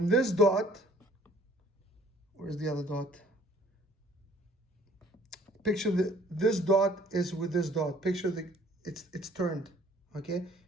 this dot, where's the other dot? Picture this dot is with this dot. Picture it's turned, okay?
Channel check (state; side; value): normal; both; correlation 0.56